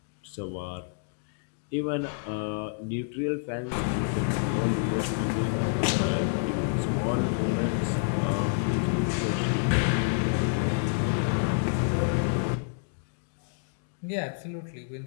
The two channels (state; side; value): silent; right; digital silence